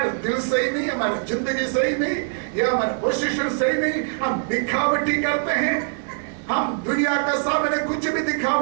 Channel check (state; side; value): silent; left; digital silence